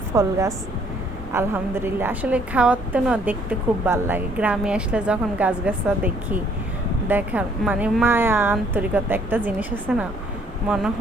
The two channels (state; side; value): normal; both; correlation 0.63